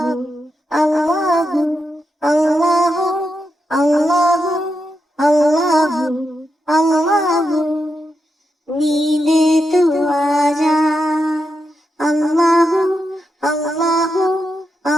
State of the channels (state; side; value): normal; both; correlation 0.86